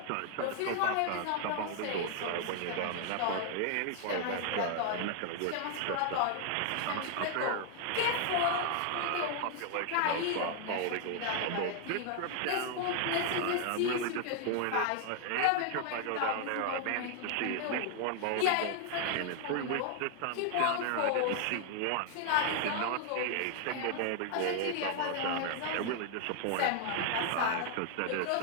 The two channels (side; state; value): both; different; correlation 0.00